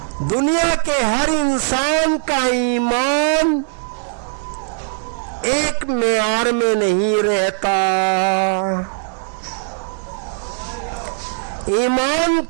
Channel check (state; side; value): silent; left; 63 dB below the other